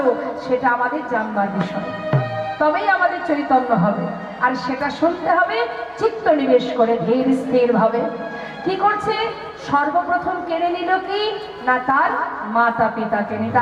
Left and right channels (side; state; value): both; identical; correlation 1.00